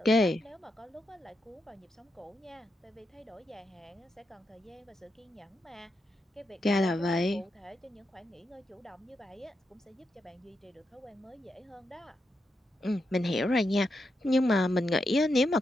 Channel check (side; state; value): both; normal; correlation 0.85